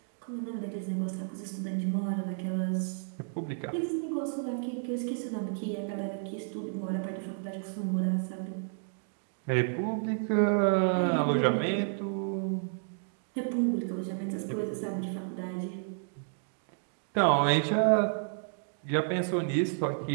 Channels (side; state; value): left; silent; digital silence